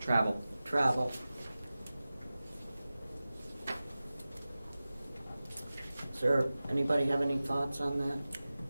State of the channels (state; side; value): inverted; both; correlation -0.96